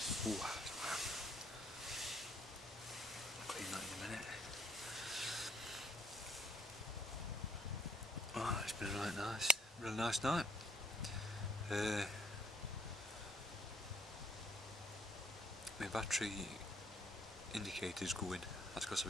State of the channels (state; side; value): normal; both; correlation 0.63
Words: Ooh, I'll clean that in a minute. Oh, it's been a really nice night. My battery indicator's going. That's because I've